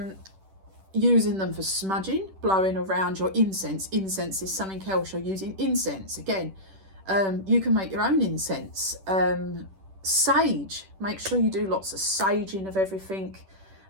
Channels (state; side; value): late; left; 10 ms